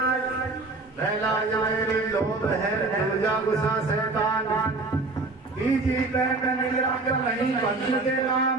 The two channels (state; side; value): quieter; left; 3.4 dB